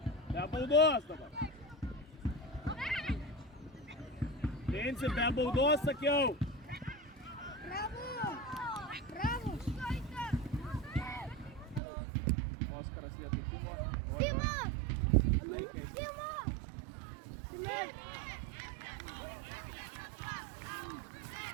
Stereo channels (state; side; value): drops out; left; at 11.8 s